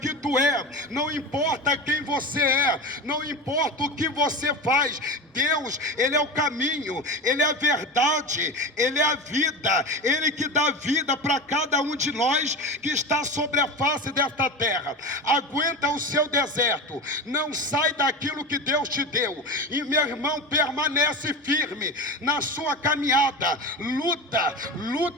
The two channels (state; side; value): normal; both; correlation 0.25